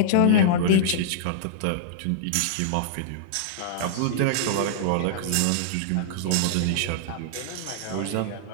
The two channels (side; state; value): both; different; correlation -0.02